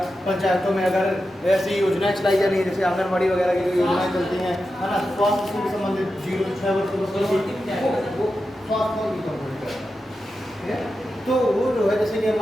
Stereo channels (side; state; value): both; normal; correlation 0.90